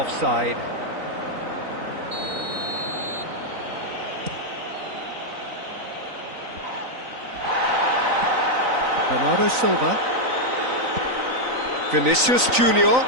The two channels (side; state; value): left; late; 3.9 ms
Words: Bernardo Silva. Vinicius Junior.